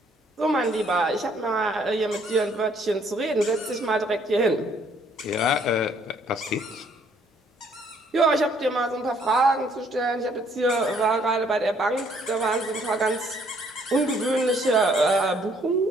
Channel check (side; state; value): both; normal; correlation 0.64